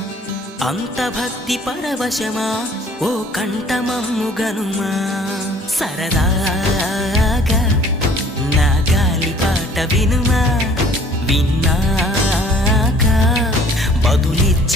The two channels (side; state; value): both; normal; correlation 0.54